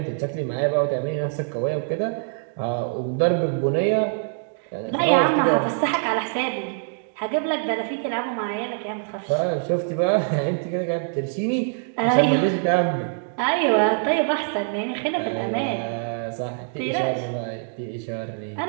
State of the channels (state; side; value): silent; left; digital silence